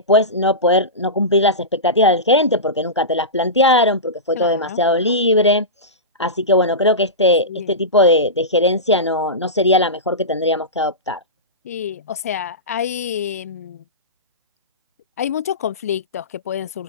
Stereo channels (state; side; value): normal; both; correlation -0.18